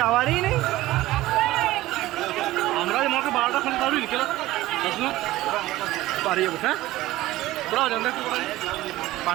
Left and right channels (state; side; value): quieter; left; 16.9 dB